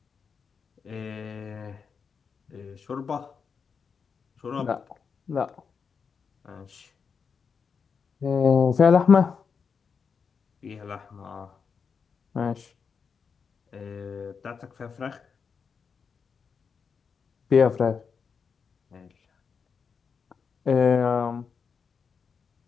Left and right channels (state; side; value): quieter; right; 5.9 dB